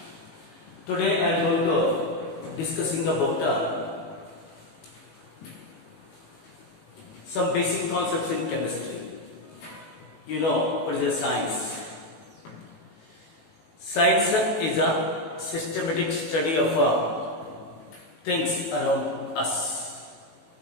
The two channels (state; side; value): late; right; 18 ms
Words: today I am going to discussing about some basic concepts in chemistry. You know what is a science? Science is a systematic study of things around us.